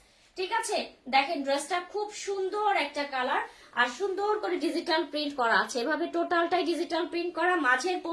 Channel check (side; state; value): both; identical; correlation 1.00